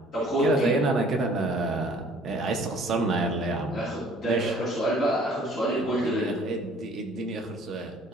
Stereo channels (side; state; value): both; normal; correlation 0.55